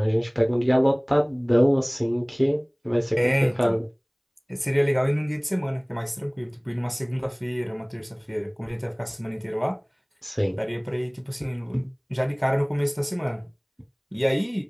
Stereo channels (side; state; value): both; identical; correlation 1.00